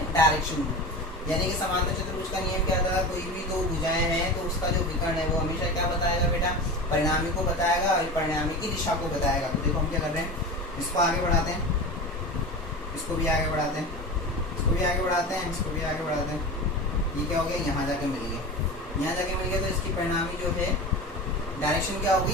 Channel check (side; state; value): both; normal; correlation 0.29